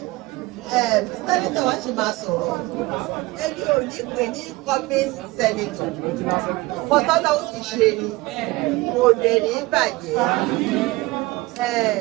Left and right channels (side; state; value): left; quieter; 21.2 dB